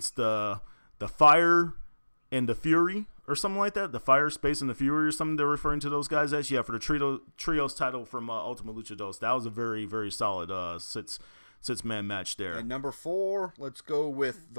the Fire and the Fury or something like that. The Fire, Space, and the Fury or something they're referring to those guys as. Yeah, for the Trios title from Ultima Lucha Dos. That was a very, very solid six-man match there. And number 4, let's go with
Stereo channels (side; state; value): both; inverted; correlation -1.00